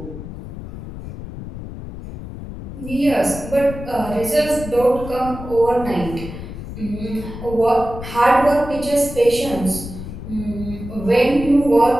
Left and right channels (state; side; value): noise; left; rumble, 11 dB below the sound